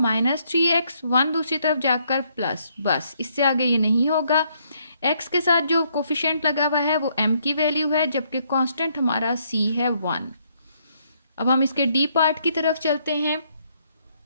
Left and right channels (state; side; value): inverted; both; correlation -0.71